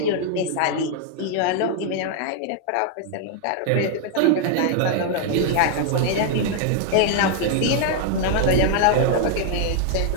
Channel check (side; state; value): both; different; correlation 0.00